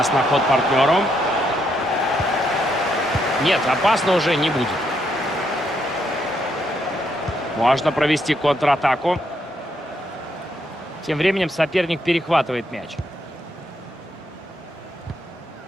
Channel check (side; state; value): both; normal; correlation 0.76